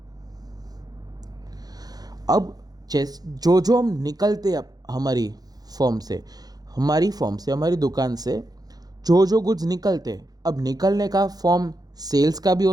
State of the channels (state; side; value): late; left; 0.19 ms